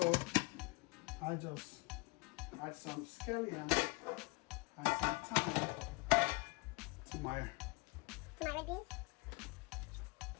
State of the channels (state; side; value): quieter; right; 26.4 dB